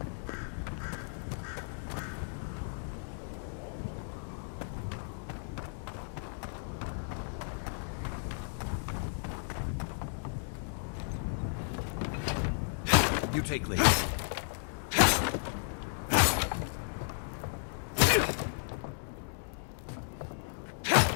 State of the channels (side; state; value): right; silent; digital silence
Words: You take lead.